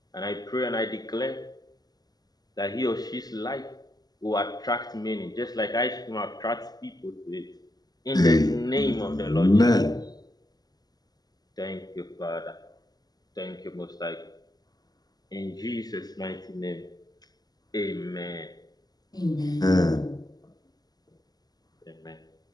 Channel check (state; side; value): late; right; 0.19 ms